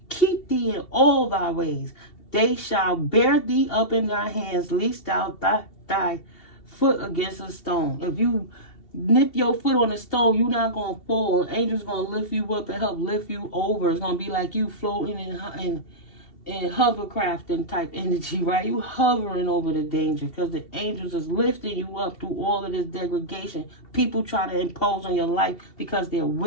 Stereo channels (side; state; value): right; late; 2.7 ms